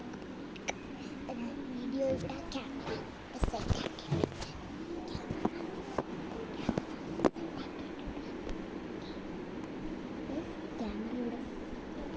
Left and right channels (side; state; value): both; identical; correlation 1.00